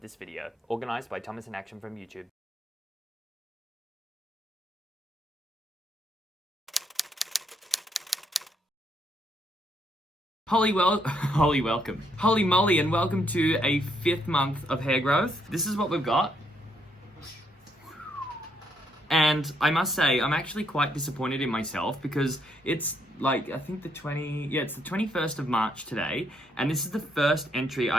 this video, organised by Thomas in Action from YouTube. Holy moly, and welcome to a 5th month of hair growth. This is what we've got. And I must say, I'm actually quite disappointed in myself because it's like, I think it's the 21st of March today, and this is the first entry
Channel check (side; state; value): both; normal; correlation 0.73